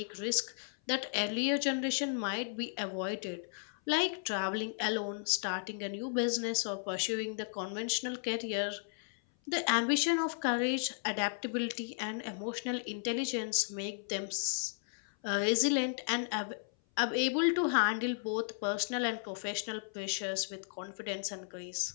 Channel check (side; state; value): right; silent; 55 dB below the other